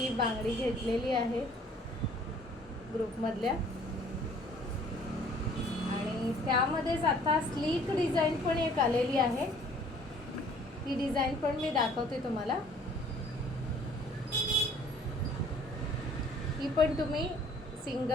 बांगडी घेतलेली आहे ग्रुपमधल्या. आणि त्यामध्येच आता स्लीक डिझाईन पण एक आलेली आहे. ती डिझाईन पण मी दाखवते तुम्हाला. ही पण तुम्ही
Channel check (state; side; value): normal; both; correlation 0.55